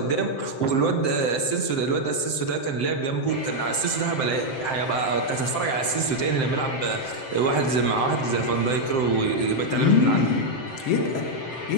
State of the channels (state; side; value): late; right; 7.7 ms